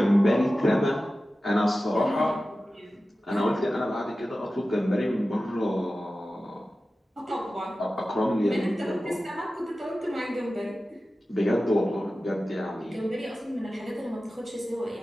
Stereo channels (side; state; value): both; normal; correlation 0.95